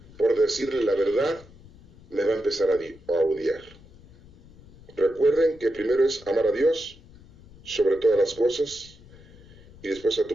por decirle la verdad, me va a empezar a odiar. Recuerden que primero es amar a Dios sobre todas las cosas y después a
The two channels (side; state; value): left; noise; rumble, 23 dB below the sound